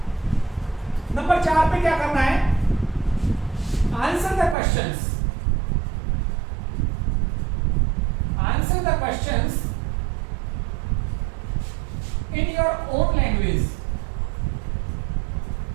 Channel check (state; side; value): drops out; left; at 4.5 s